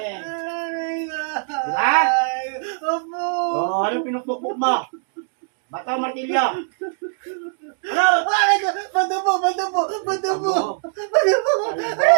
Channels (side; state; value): left; silent; digital silence